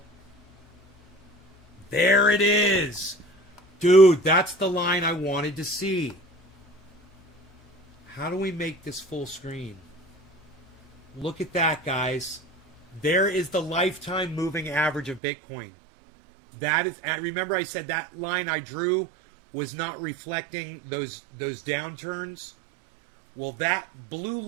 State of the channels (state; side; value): drops out; left; at 15.2 s